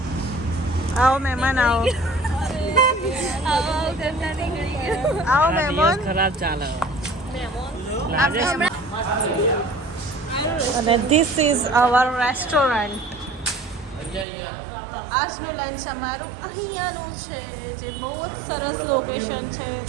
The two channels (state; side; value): drops out; left; at 14.2 s